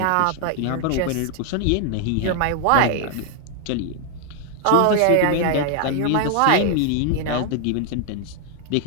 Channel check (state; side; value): different; both; correlation 0.00